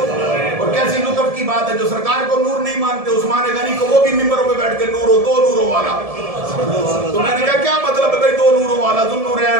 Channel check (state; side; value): late; left; 1.7 ms